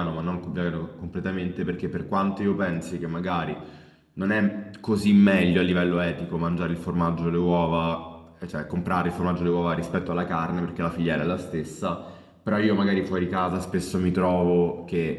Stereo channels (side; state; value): both; identical; correlation 1.00